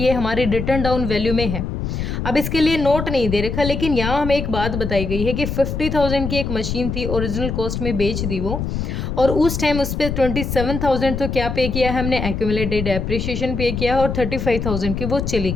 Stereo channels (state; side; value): noise; left; rumble, 3 dB below the sound